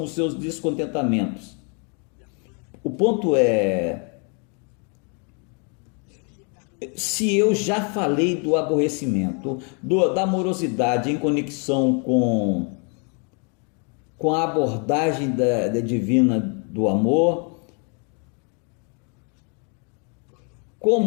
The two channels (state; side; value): quieter; right; 37.3 dB